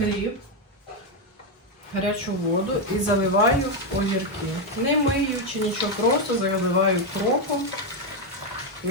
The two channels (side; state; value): both; normal; correlation 0.05